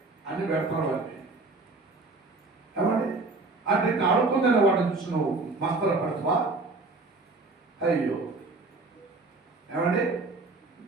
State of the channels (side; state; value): left; quieter; 3.5 dB